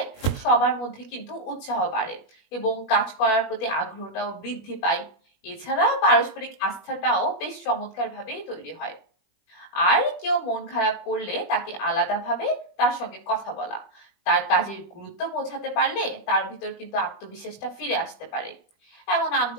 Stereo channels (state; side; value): late; right; 21 ms